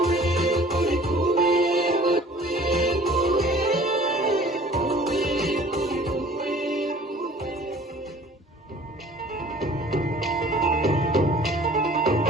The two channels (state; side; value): normal; both; correlation 0.49